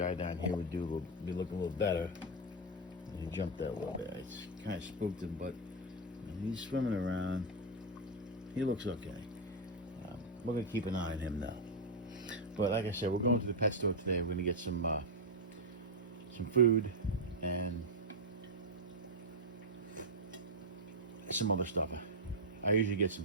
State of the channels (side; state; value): both; normal; correlation 0.02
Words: down here would be looking a little better. He jumped out a little bit. It's kind of spooked him, but he's swimming around. He looks okay. We're gonna keep an eye on him now. But like I said, we're going to the pet store today. We're gonna get some food and some other stuff. I usually get some